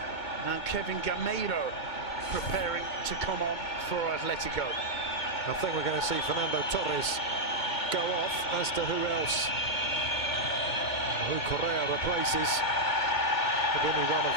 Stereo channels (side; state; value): right; late; 2.2 ms